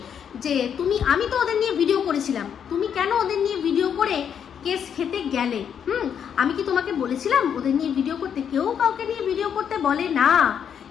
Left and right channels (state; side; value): quieter; right; 8.1 dB